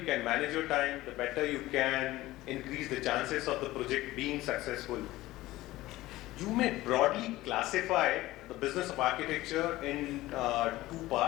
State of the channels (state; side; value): quieter; right; 17.3 dB